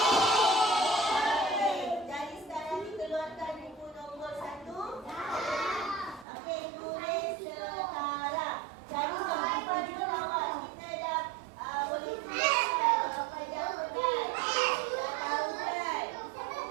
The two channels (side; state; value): left; drops out; at 6.2 s